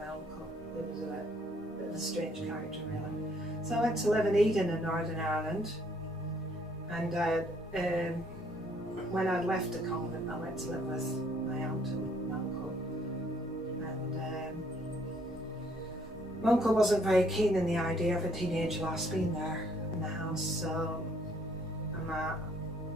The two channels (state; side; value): normal; both; correlation 0.65